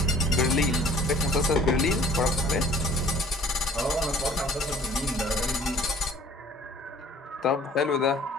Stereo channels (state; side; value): normal; both; correlation 0.53